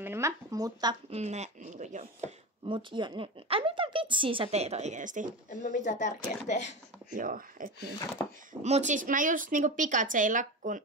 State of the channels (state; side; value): normal; both; correlation 0.23